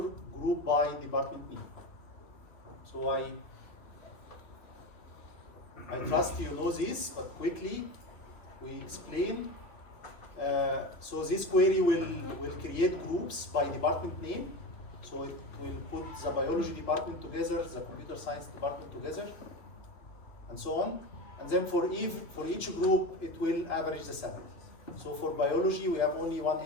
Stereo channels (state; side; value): late; right; 2.6 ms